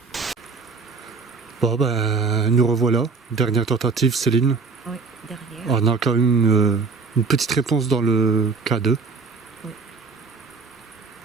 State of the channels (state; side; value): quieter; left; 4.7 dB